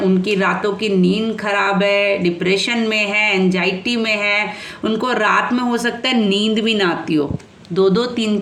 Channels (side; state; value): both; identical; correlation 1.00